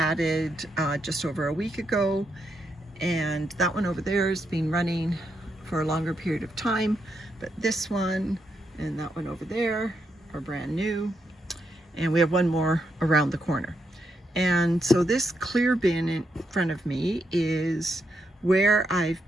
just over a week ago, and that one over there has been running for a longer period of time, but this one and that one over there are brand new, and we have one more around the corner. And so this clear bin in front of me is where I've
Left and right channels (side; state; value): both; normal; correlation 0.81